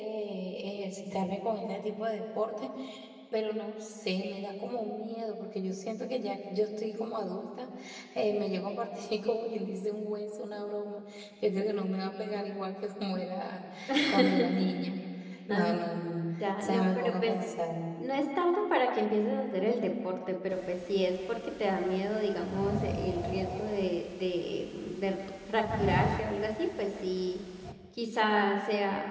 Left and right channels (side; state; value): both; identical; correlation 1.00